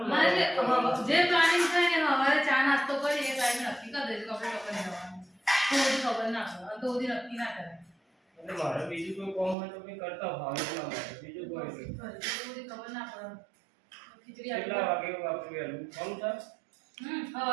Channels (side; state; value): left; drops out; at 9.6 s